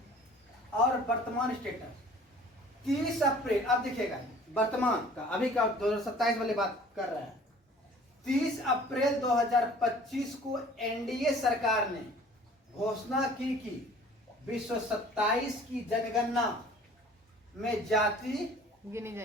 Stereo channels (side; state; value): both; normal; correlation 0.49